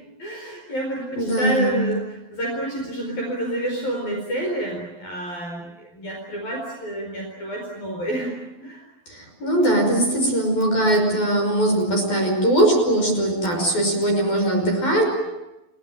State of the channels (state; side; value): late; right; 12 ms